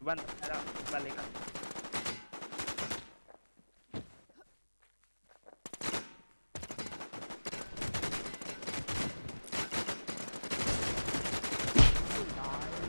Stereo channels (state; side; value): inverted; both; correlation -1.00